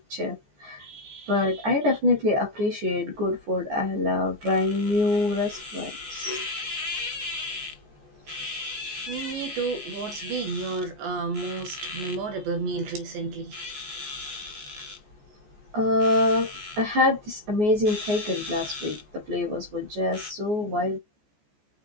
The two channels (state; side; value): late; left; 14 ms